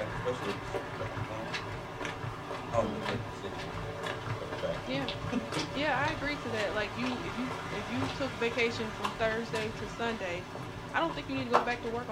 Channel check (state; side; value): identical; both; correlation 1.00